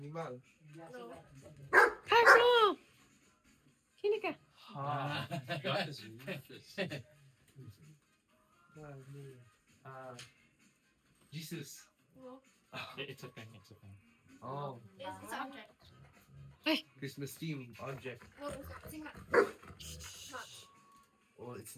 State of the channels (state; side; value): identical; both; correlation 1.00